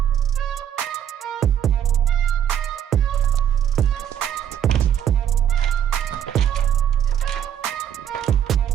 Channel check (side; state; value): left; quieter; 9.7 dB